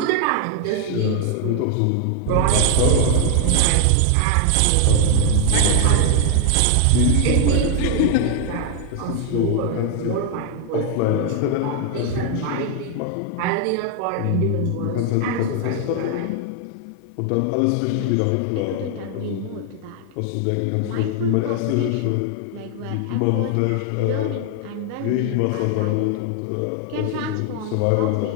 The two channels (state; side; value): different; both; correlation 0.00